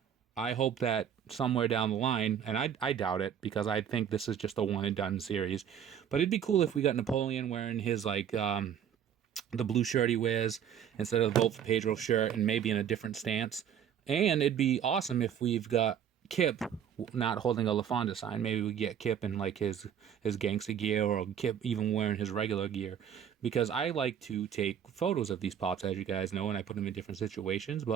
I hope that somewhere down the line, and I doubt it because I think this is just a one and done series, but it'd be cool if we got Napoleon wearing his the blue shirt he wears instead of the Vote for Pedro shirt and maybe in a different stance. And it'd be awesome if we've got Kip not holding a LaFonda sign. Maybe we get Kip in like his gangster gear, or Kip even wearing his regular gear, because I like to take photos of these pops, as you guys know, and I put them in different situations.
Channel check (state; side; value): quieter; left; 8.8 dB